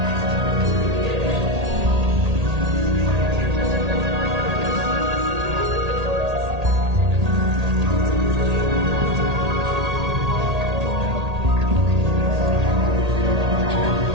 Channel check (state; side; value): late; left; 1.8 ms